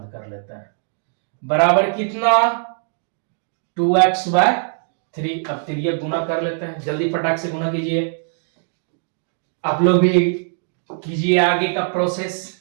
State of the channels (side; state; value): left; silent; digital silence